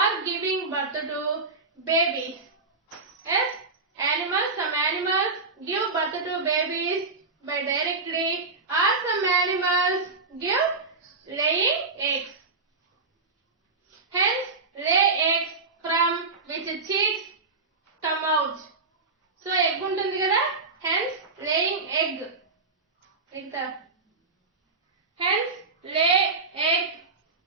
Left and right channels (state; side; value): quieter; left; 4.0 dB